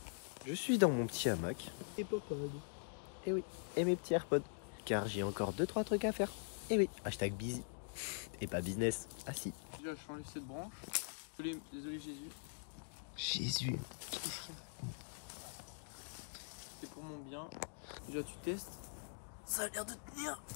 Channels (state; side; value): silent; right; digital silence